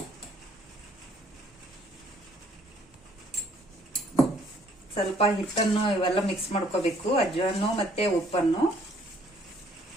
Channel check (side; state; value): both; normal; correlation 0.62